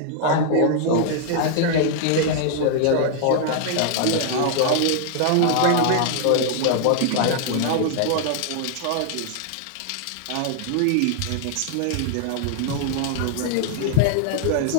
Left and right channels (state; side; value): different; both; correlation 0.00